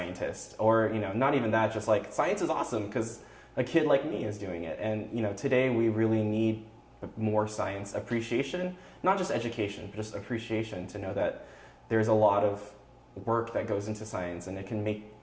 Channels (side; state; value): both; identical; correlation 1.00